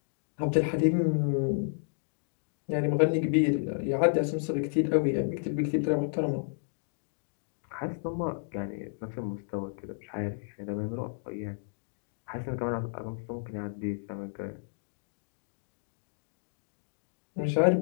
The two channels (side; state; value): right; silent; digital silence